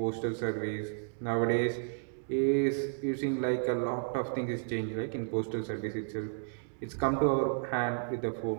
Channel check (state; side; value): silent; left; digital silence